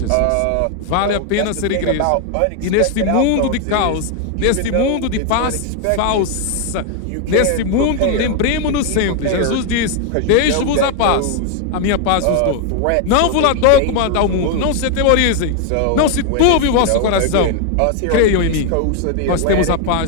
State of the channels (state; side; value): different; both; correlation 0.00